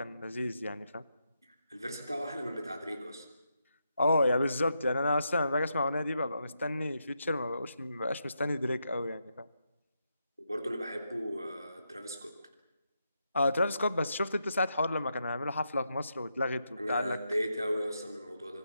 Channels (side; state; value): both; inverted; correlation -0.83